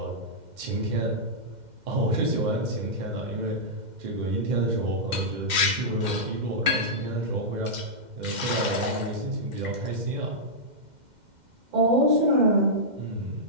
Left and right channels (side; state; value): left; late; 2.1 ms